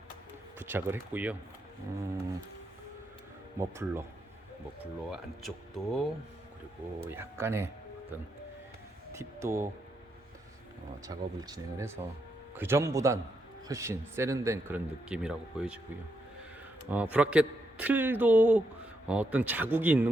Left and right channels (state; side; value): normal; both; correlation 0.81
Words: 부착을 했고요. 머플러 안쪽도 그리고 약간의 어떤 팁도 작업을 진행을 해서 그 전보단 훨씬 세련된 그런 느낌이라고 보여지고요. 브라켓 틀도 어떤 자국이